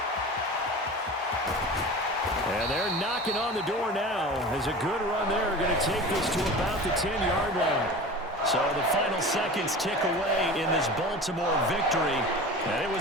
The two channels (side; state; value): both; normal; correlation 0.35